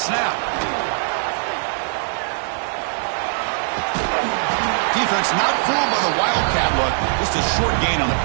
Defense not fooled by the wildcat look. Just a short gain on the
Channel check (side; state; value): left; silent; digital silence